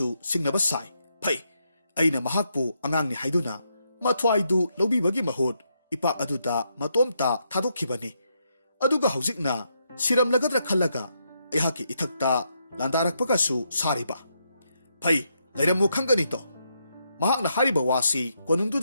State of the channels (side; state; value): both; inverted; correlation -0.80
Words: singnaba sai phai aina mahakpu angangni haiduna mathwaidu lobibagi mahut ipak aduda matomta thadokhibani aduga haujikna siramlagadra khallaga ehaki ithakta landarakpagasu sariba phai lairamu khangani to mahakna hariba wasi